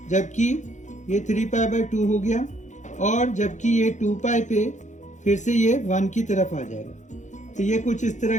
जबकि ये 3π/2 हो गया, और जबकि ये 2π पे फिर से ये 1 की तरफ आ जाएगा। तो ये कुछ इस तरह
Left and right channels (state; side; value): late; right; 0.35 ms